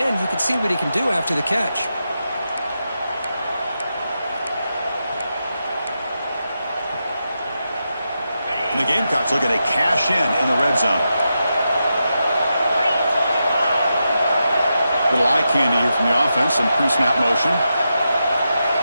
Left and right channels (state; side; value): inverted; both; correlation -0.87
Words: You can see what he can do after the catch. And the Gamecocks looking to cash in the red zone. Little eye candy here from the offense, some pre-snap motion.